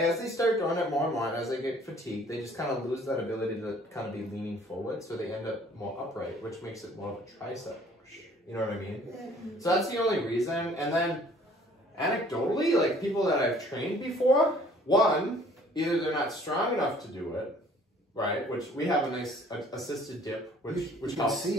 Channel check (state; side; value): normal; both; correlation 0.55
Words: start doing it more and more, and as they get fatigued, they just kind of lose that ability to kind of be leaning forward. So they end up more upright, which makes it more of a tricep push. You know what I mean? So that's the only reason. And then anecdotally, like people that I've trained before, one, either they're not strong enough to do it, right? Which we have a nice assisted dip, which helps. See